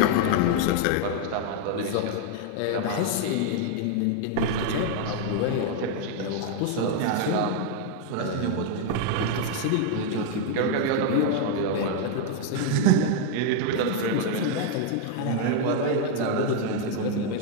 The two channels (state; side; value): different; both; correlation 0.00